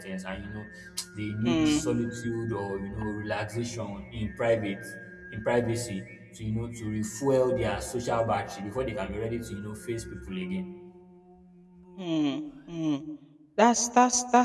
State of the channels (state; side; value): identical; both; correlation 1.00